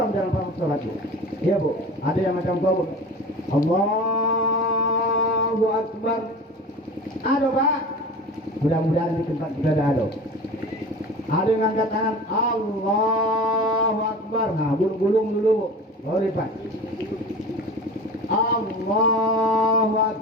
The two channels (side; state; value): both; normal; correlation 0.36